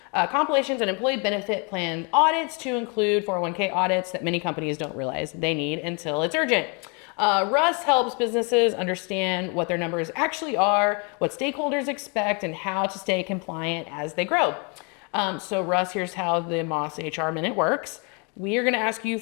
compilations, and employee benefit plan audits to include 401k audits that many companies don't realize they need until it's urgent. Russ helps businesses understand what their numbers actually are, what stakeholders expect, and how to stay compliant as they grow. So Russ, here's how the Moss HR Minute works. We are going to ask you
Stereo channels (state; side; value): quieter; right; 34.1 dB